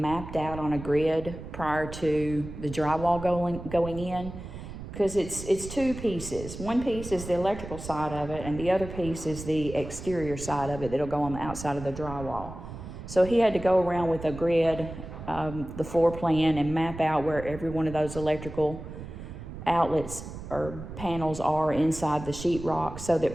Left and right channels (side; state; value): right; noise; rumble, 11 dB below the sound